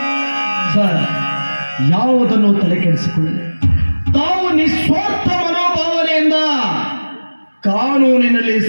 ಸರ್, ಯಾವುದನ್ನು ತಲೆ ಕೆಡಿಸಿಕೊಳ್ಳಿ. ತಾವು ನಿಸ್ವಾರ್ಥ ಮನೋಭಾವನೆಯಿಂದ ಕಾನೂನಿನಲ್ಲಿ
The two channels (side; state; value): both; inverted; correlation -1.00